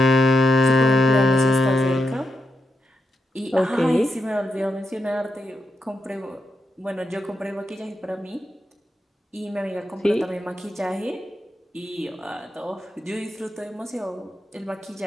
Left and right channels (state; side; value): normal; both; correlation 0.85